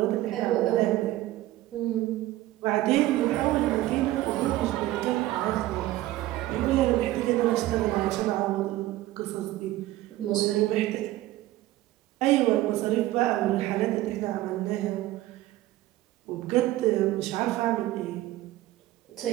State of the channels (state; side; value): quieter; left; 16.0 dB